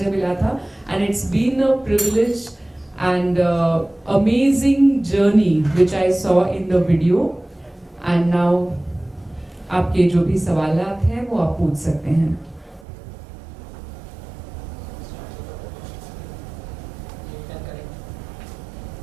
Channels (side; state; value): left; drops out; at 12.9 s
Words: मिला था. And it's been a privilege and amazing journey which I saw in the video. And now आपके जो भी सवालात हैं वो आप पूछ सकते हैं।